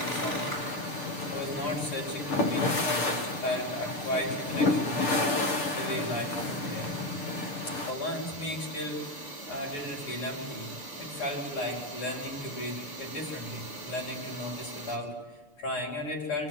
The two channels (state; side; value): late; right; 6.8 ms